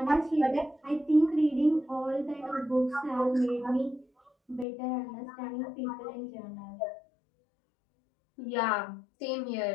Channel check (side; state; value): right; drops out; at 4.7 s